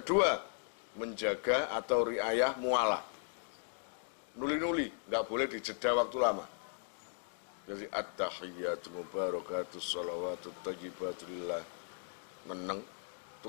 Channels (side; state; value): right; silent; 53 dB below the other